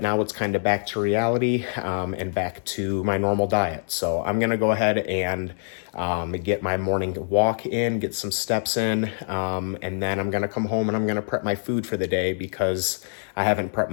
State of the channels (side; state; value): right; silent; 62 dB below the other